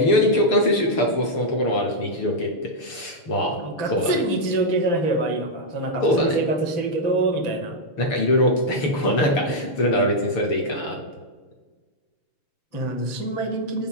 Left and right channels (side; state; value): right; late; 6.8 ms